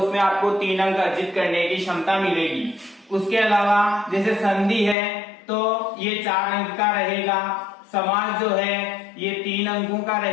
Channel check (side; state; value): right; drops out; at 5.0 s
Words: आपको 3 अंक अर्जित करने की क्षमता मिलेगी। उसके अलावा जैसे संधि है तो ये 4 अंक का रहेगा, समास जो है ये 3 अंकों का